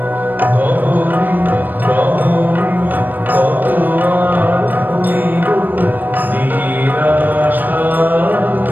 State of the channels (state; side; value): late; left; 0.089 ms